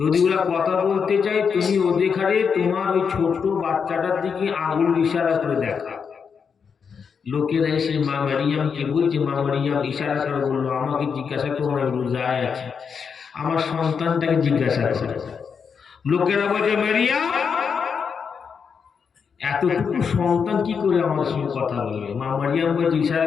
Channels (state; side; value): quieter; right; 6.3 dB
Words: ওরা কথা বলতে চাই, তুমি ওদের ঘাড়ে তোমার ওই ছোট্ট বাচ্চাটার দিকে আঙুল ইশারা করে দেখা। লোকেরা এসে মা মারিয়ামকে বলছে, মা মারিয়াম ইশারা করে বললো, আমাকে জিজ্ঞাসা করো না, রোজায় আছে, আমার সন্তানটাকে জিজ্ঞাসা করে। লোকেরা বলছে, মারিয়াম এতটুকু সন্তান কি করে আমার সঙ্গে কথা বলবে? মা মারিয়াম বলছে, ইশারা